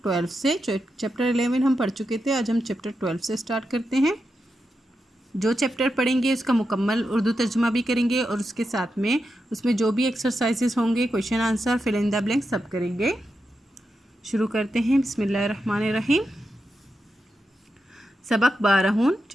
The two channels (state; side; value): normal; both; correlation 0.87